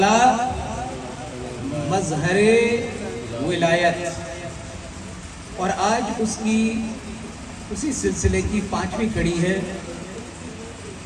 مظہر ولایت، اور آج اسی سلسلے کی 5ویں کڑی ہے۔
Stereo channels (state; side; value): identical; both; correlation 1.00